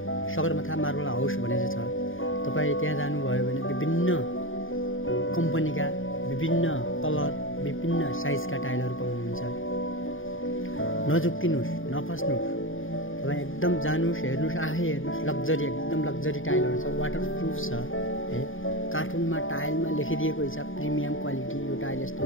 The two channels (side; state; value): right; late; 0.58 ms